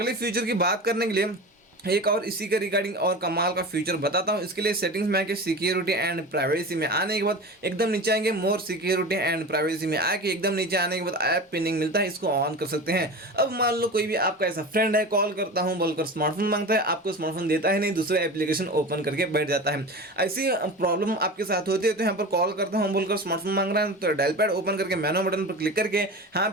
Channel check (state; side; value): normal; both; correlation 0.31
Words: फीचर की बात करने के लिए एक और इसी के रिगार्डिंग और कमाल का फीचर बताता हूं। इसके लिए सेटिंग्स में आके सिक्योरिटी एंड प्राइवेसी में आने के बाद एकदम नीचे आएंगे, मोर सिक्योरिटी एंड प्राइवेसी में आके एकदम नीचे आने के बाद ऐप पिनिंग मिलता है, इसको ऑन कर सकते हैं। अब मान लो कोई भी आपका ऐसा फ्रेंड है, कॉल करता हूं बोलकर स्मार्टफोन मांगता है, आपको स्मार्टफोन देता है नहीं, दूसरा एप्लीकेशन ओपन करके बैठ जाता है। ऐसी प्रॉब्लम आपके साथ होती है तो यहाँ पर कॉल करता हूँ बोलकर स्मार्टफोन मांग रहा है तो डायल पैड ओपन करके मेनू बटन पर क्लिक करके यहाँ